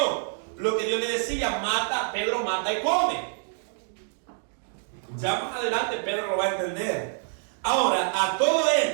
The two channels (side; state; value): left; silent; 56 dB below the other